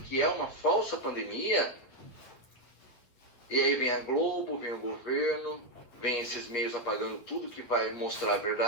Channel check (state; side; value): late; right; 8.6 ms